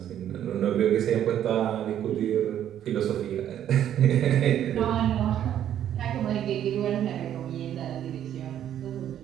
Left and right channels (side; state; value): left; quieter; 10.6 dB